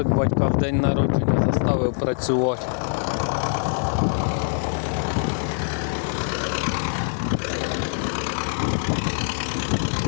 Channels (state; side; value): silent; right; 63 dB below the other